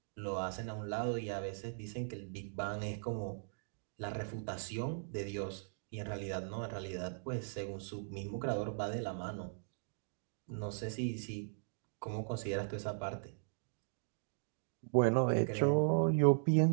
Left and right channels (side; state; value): left; silent; digital silence